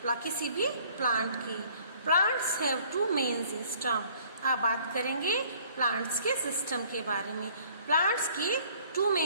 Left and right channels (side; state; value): both; inverted; correlation -0.56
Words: किसी भी प्लांट की। Plants have two main system. अब बात करेंगे प्लांट्स के सिस्टम के बारे में। प्लांट्स के 2